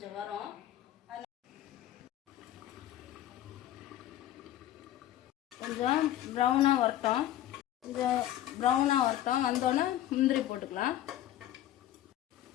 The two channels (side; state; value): right; quieter; 12.9 dB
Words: வரும். கொஞ்சம் ப்ரௌனாக வரட்டும். கொஞ்சம் ப்ரௌனாக வரட்டும். வந்தோடனே முந்திரி போட்டுக்கலாம்.